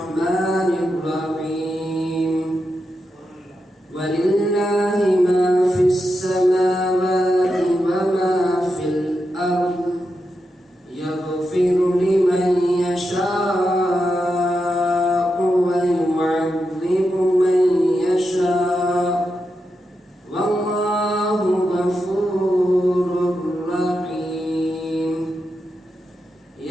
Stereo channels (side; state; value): both; normal; correlation 0.87